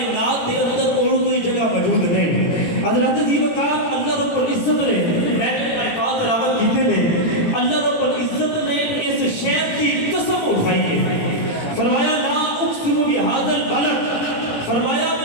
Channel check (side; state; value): right; late; 17 ms